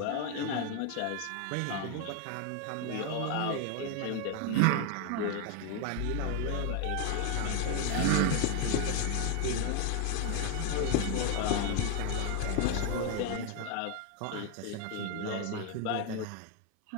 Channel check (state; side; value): different; both; correlation 0.00